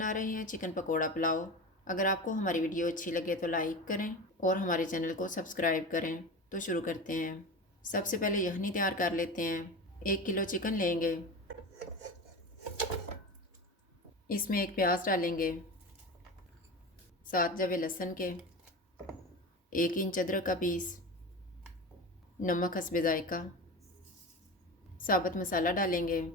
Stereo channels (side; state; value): both; normal; correlation 0.28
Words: रहे हैं चिकन पकोड़ा पुलाव। अगर आपको हमारी वीडियो अच्छी लगे तो लाइक करें और हमारे चैनल को सब्सक्राइब करें। तो शुरू करते हैं। सबसे पहले यखनी तैयार कर लेते हैं। 1 किलो चिकन लेंगे। इसमें एक प्याज डालेंगे, 7 जवे लहसुन के, 1 इंच अदरक का पीस, नमक हस्बे जायका, साबुत मसाला डालेंगे।